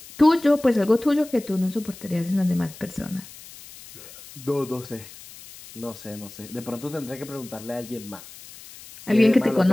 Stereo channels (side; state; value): left; noise; hiss, 18 dB below the sound